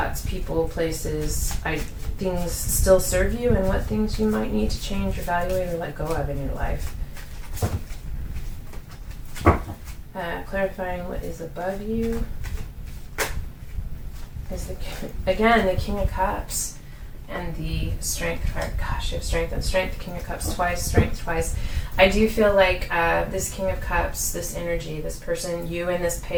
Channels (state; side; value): identical; both; correlation 1.00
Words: people, places, things still serve you, and what things you might need to change, evaluate, or let go of in your life. Clarifying what is above you is, again, the King of Cups and the Strength card. Gosh, you have Strength and Strength, King of Cups twice, Strength twice. I do feel like this King of Cups, this energy, this person, you in this